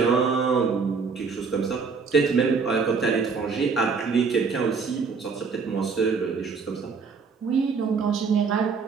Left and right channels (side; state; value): left; quieter; 5.2 dB